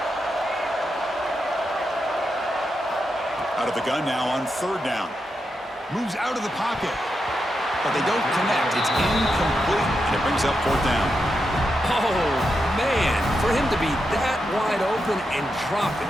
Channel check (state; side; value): normal; both; correlation 0.86